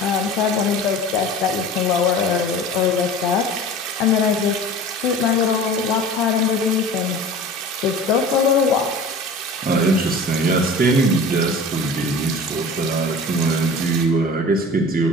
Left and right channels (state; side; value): normal; both; correlation 0.39